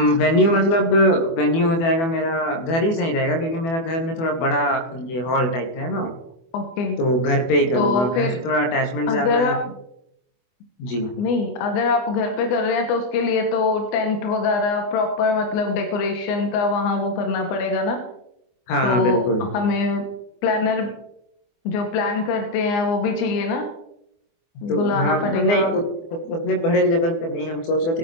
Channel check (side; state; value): right; late; 24 ms